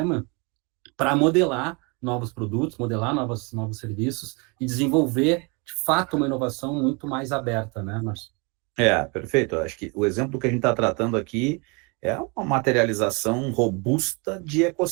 para modelar novos produtos, modelar novos serviços e desenvolver, de fato, uma inovação muito mais aberta, né, Márcio? Perfeito. Eu acho que o exemplo que a gente está tratando aqui é uma materialização robusta de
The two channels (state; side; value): quieter; left; 30.8 dB